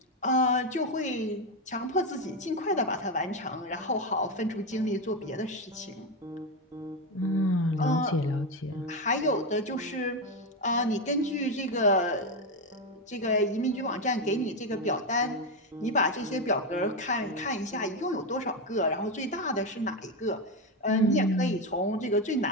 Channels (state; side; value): normal; both; correlation 0.10